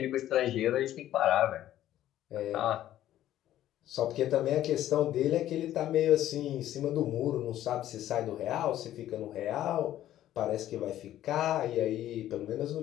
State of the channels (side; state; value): right; quieter; 12.8 dB